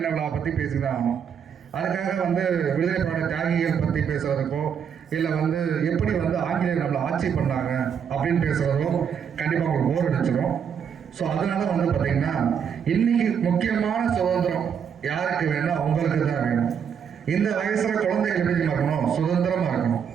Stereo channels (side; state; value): left; quieter; 7.5 dB